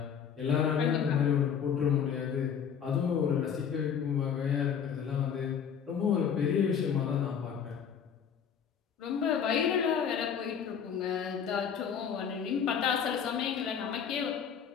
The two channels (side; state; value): right; quieter; 7.6 dB